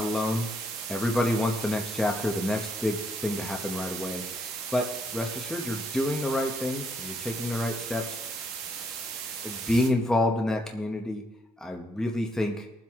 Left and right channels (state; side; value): normal; both; correlation 0.73